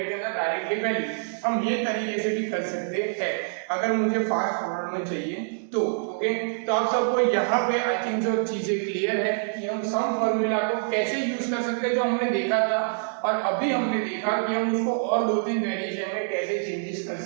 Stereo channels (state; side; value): silent; left; digital silence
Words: के अंदर डायरेक्टली वैल्यू, हम ये तरीके से भी कर सकते हैं अगर मुझे फास्ट फॉरवर्ड में चाहिए तो, ओके। तो आप सबको यहाँ पे आई थिंक जो चीजें क्लियर है कि हम सम फॉर्मूला को कैसे यूज कर सकते हैं, जो हमने देखा था, और अभी हमने देखा कि हम उसको और 2-3 वेरिएशन में कैसे चेंजेस कर